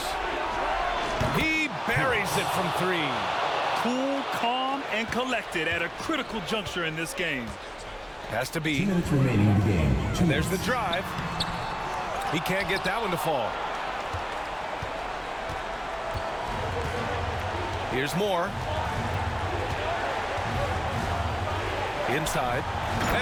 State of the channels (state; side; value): identical; both; correlation 1.00